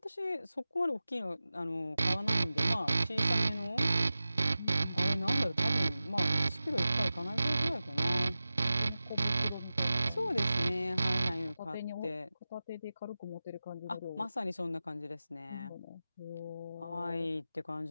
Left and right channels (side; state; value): both; inverted; correlation -0.95